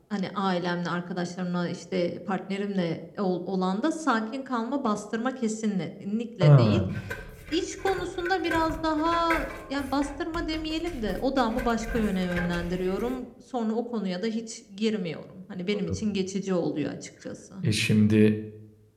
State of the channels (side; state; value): both; identical; correlation 1.00